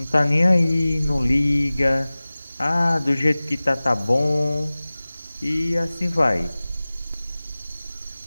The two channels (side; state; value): both; inverted; correlation -0.98